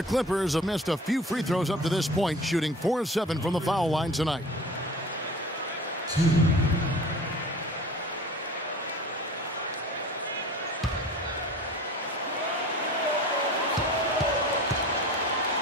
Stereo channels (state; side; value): normal; both; correlation 0.41